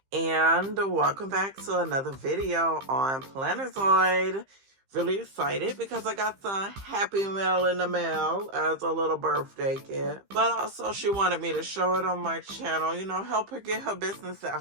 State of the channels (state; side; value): late; left; 15 ms